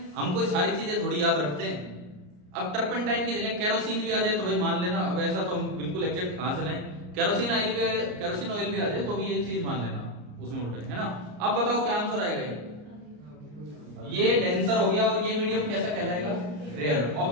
हम कोई सारी चीजें थोड़ी याद रखते हैं। अब टर्पेंटाइन की जगह केरोसिन भी आ जाए तो भाई मान लेना, अब ऐसा तो हम बिल्कुल एग्जैक्ट कहां से लाएं, केरोसिन ऑयल भी आ जाए तो भी ये चीज मान लेना, उसमें उल्टा है ना। अब बताओ क्या आंसर आएगा? ये डेंसर हो गया और ये मीडियम कैसा कहलाएगा? रेयर।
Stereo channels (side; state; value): left; late; 34 ms